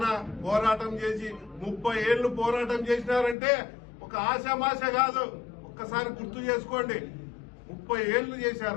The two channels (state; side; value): drops out; right; at 3.4 s